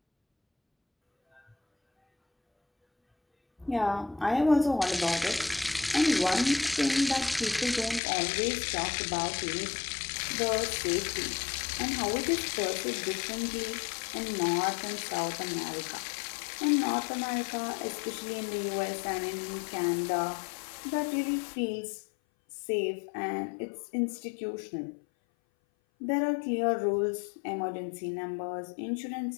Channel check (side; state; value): right; drops out; at 8.0 s